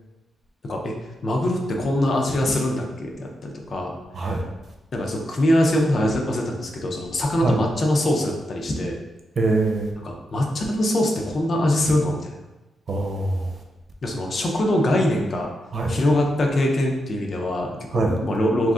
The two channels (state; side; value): normal; both; correlation 0.85